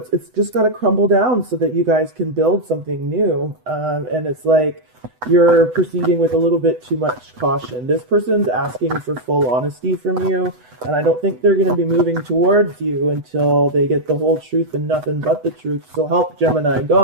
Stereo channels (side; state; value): left; late; 8.0 ms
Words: just got to crumble down so that you guys can build something new. And it's like you're proceeding with a little bit too much caution. This person's asking for full honesty from you, and I don't think they're going to be moving towards you until they get the whole truth and nothing but the truth. So help Gemini